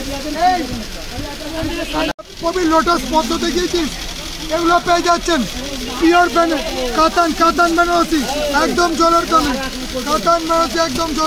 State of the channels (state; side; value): identical; both; correlation 1.00